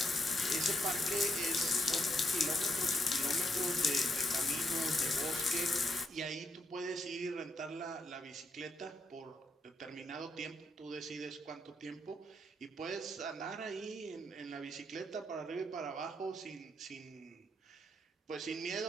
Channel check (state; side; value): normal; both; correlation 0.80